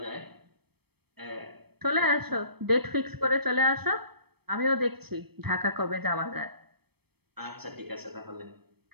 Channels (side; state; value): left; late; 0.97 ms